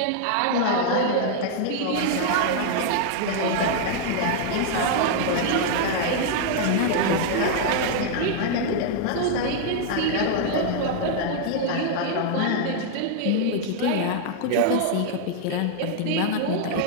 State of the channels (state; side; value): different; both; correlation 0.00